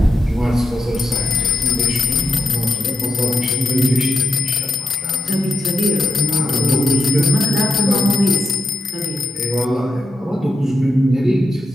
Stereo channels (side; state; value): both; normal; correlation 0.85